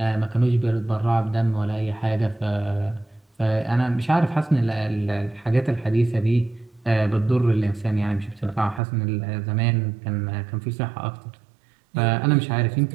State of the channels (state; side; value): drops out; left; at 8.8 s